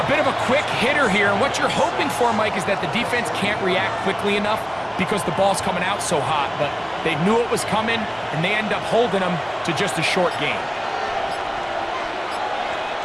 bit of a quick hitter here. And what you're hoping for, Mike, is that the defense can't react quickly enough because the ball's coming out so hot, but they knew it was coming, and they end up holding them to just a short gain.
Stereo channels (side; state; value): both; identical; correlation 1.00